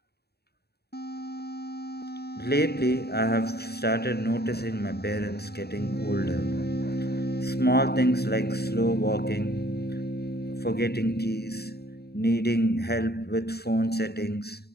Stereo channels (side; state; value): right; late; 0.47 ms